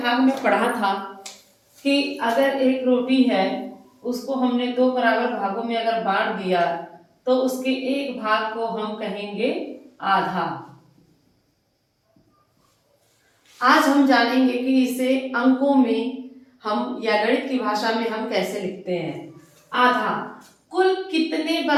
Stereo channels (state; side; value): identical; both; correlation 1.00